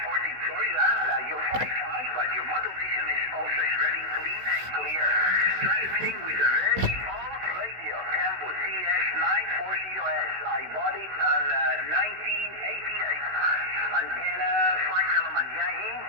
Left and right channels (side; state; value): left; late; 16 ms